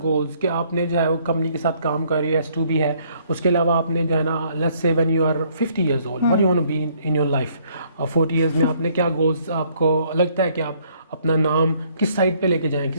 कि आपने जो है वो कंपनी के साथ काम कर रही है, S2B है, उसके अलावा आपने जो है ना let's say when you are 50 years old what you want to be in your life, 40 years में आपने क्या गोल्स, आपको लगता है कि आप अपना नाम किस साइड पे लेके जाएं,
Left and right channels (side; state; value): both; inverted; correlation -0.64